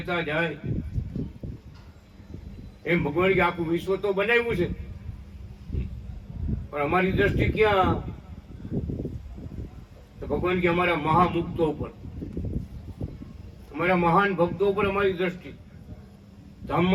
જાય। એમ ભગવાન કે આખું વિશ્વ તો બનાવ્યું છે, પણ અમારી દ્રષ્ટિ ક્યાં? તો ભગવાન કે અમારા મહામુક્તો ઉપર, અમારા મહાન ભક્તો ઉપર અમારી દ્રષ્ટિ।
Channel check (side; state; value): both; identical; correlation 1.00